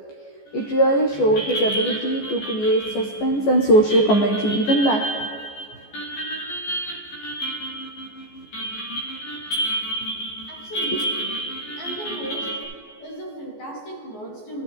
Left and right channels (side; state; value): right; late; 14 ms